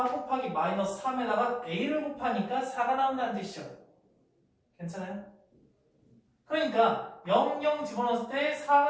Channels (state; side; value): identical; both; correlation 1.00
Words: 곱하기 마이너스 3에다가 a를 곱하니까 4가 나온다는 뜻이죠. 괜찮아요? 그러니까 0, 0 집어넣었을 때